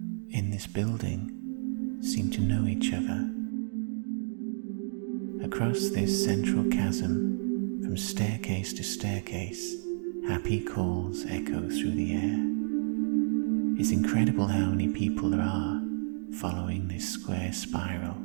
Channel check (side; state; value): left; silent; digital silence